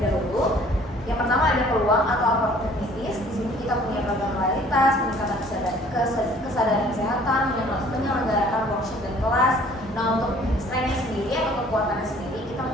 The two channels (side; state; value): both; normal; correlation 0.54